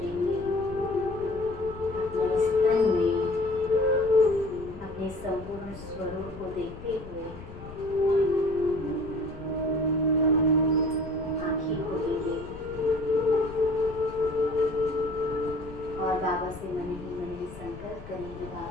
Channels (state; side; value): noise; left; rumble, 14 dB below the sound